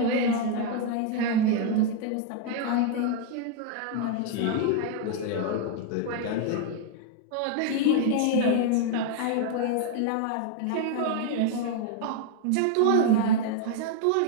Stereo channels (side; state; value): both; different; correlation 0.00